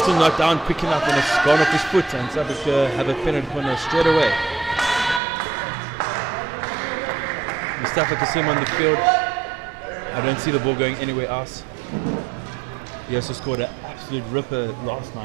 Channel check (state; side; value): drops out; left; at 5.2 s